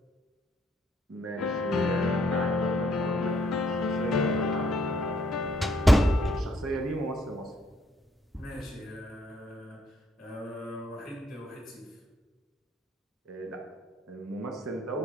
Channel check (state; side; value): normal; both; correlation 0.68